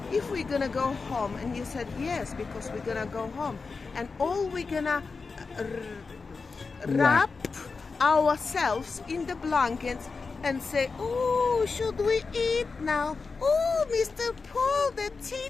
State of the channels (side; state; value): right; quieter; 4.5 dB